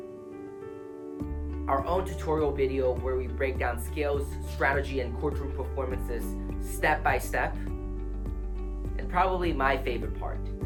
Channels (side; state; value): both; identical; correlation 1.00